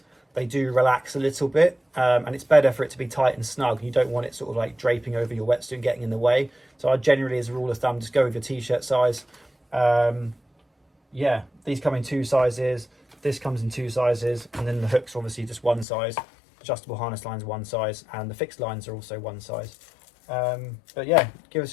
they do relax a little bit, and it's better for it to be tight and snug. You don't want it sort of like draping over your wetsuit and getting in the way. So I generally, as a rule of thumb, just go with your t-shirt size. Yeah, these come in 2 sizes, this comes in 2 sizes, and then the hooks are obviously just 1 size, adjustable harness lines 1 size, and the fixed lines are also 1 size. But yeah, give us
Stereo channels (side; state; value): right; drops out; at 15.9 s